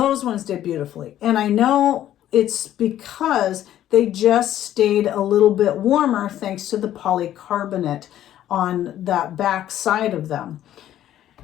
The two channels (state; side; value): quieter; right; 12.1 dB